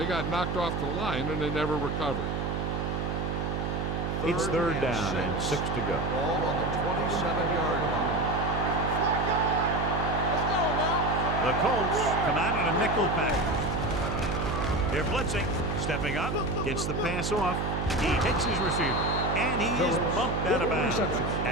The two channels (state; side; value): noise; right; hum, 1 dB below the sound